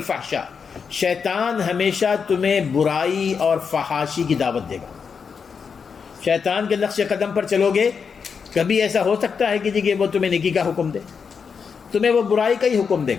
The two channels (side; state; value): right; quieter; 6.0 dB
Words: شیطان ہمیشہ تمہیں برائی اور فحاشی کی دعوت دے گا۔ شیطان کے نقش قدم پر چلو گے، کبھی ایسا ہو سکتا ہے کہ جی کہ وہ تمہیں نیکی کا حکم دے، تمہیں وہ برائی کا ہی حکم دے